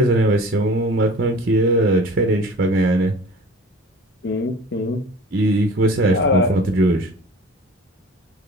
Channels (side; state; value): both; normal; correlation 0.43